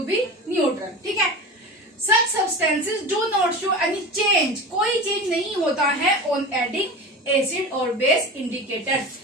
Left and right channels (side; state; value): both; normal; correlation 0.30